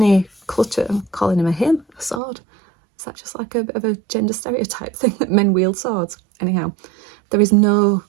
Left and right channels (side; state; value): left; drops out; at 2.2 s